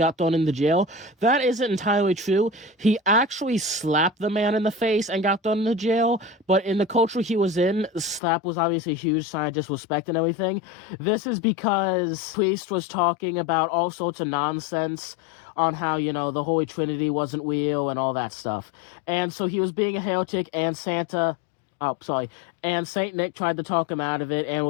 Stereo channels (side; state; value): right; drops out; at 8.2 s